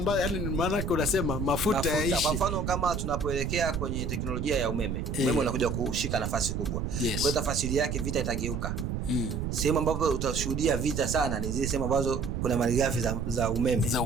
Yani maana yake unasema mafuta yaishe. Kwa mfano kama tunapoelekea kwenye teknolojia ya umeme, umeme unakuja kushika nafasi kubwa. Kwa hiyo tafasiri yake vita itageuka. Sehemu ambapo utashuhudia vita sana ni zile sehemu ambazo kuna malighafi za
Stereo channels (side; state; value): right; noise; rumble, 3 dB below the sound